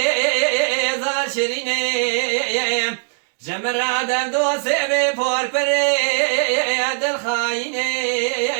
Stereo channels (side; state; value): left; silent; 66 dB below the other